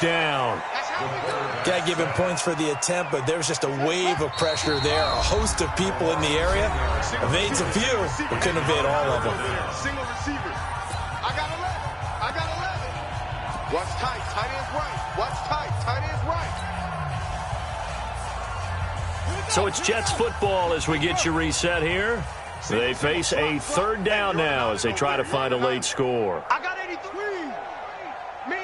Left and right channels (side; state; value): both; identical; correlation 1.00